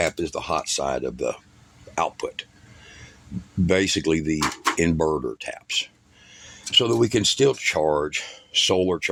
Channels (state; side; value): identical; both; correlation 1.00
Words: is the hot side of the output, basically the inverter taps, so that we can still charge, solar